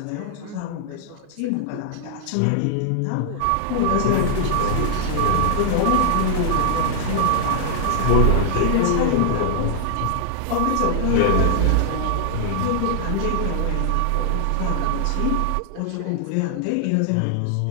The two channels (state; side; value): different; both; correlation 0.00